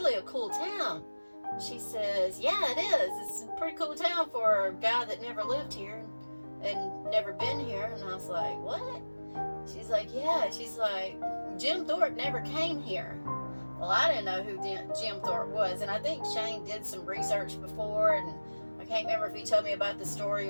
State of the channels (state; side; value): inverted; both; correlation -1.00